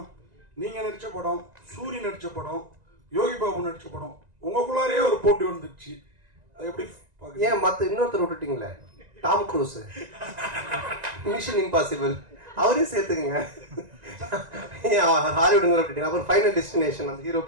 நீங்கள் நடித்த படம், சூரி நடித்த படம், யோகி பாபு நடித்த படம், உங்களுக்குள்ளாரே ஒரு போட்டி வந்துடுச்சு, அது எப்படி? ஏன் மற்ற இன்னொருத்தர் விட்டுட்டீங்களே, டாம் க்ரூஸ், மிஷன் இம்பாசிபிள், அவரே சேர்த்துக்குங்க. ஹாலிவுட்ல விட்டுட்டீங்க. அப்புறம் ஃபைனல் டெஸ்டினேஷன், அந்த ஹீரோ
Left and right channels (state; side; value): late; left; 1.9 ms